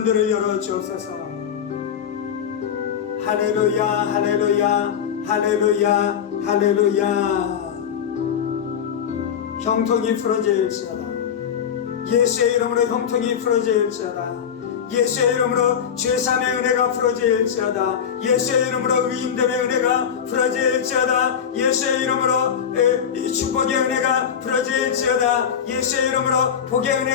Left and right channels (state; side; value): quieter; right; 8.1 dB